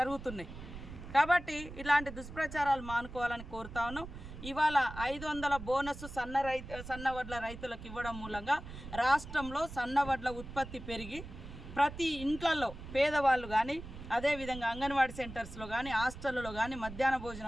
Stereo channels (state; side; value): noise; right; rumble, 12 dB below the sound